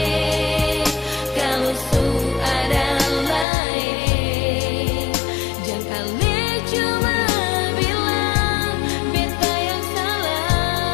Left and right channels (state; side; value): drops out; right; at 3.5 s